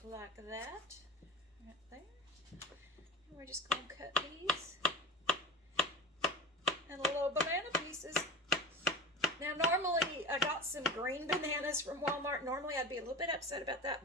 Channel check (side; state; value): both; normal; correlation 0.29